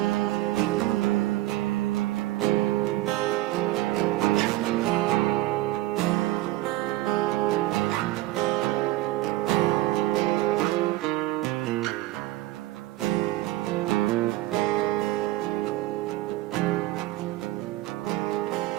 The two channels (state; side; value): quieter; left; 17.2 dB